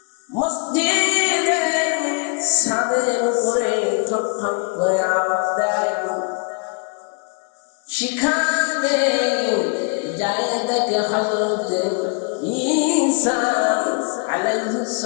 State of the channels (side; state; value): right; quieter; 37.3 dB